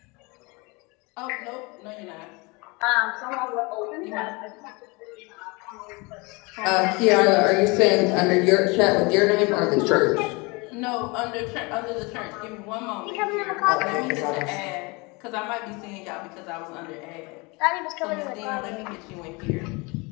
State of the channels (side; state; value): right; quieter; 27.2 dB